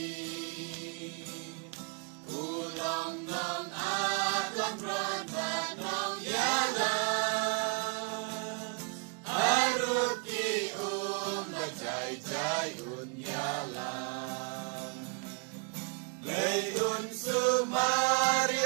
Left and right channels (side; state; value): left; quieter; 33.4 dB